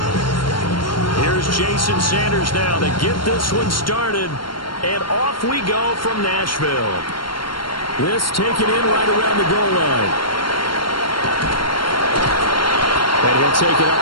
Here's Jason Sanders now to get this one started. And off we go from Nashville. This taken in right around the goal line. And he'll take it up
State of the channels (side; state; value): right; late; 0.72 ms